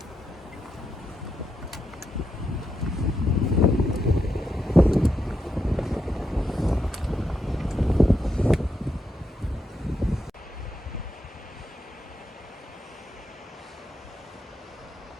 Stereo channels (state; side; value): normal; both; correlation 0.83